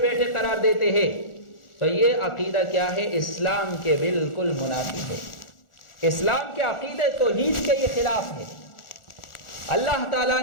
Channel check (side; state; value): right; late; 1.4 ms